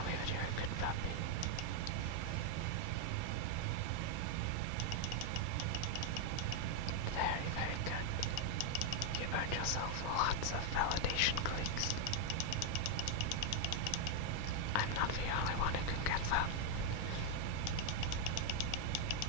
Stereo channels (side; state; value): both; different; correlation 0.00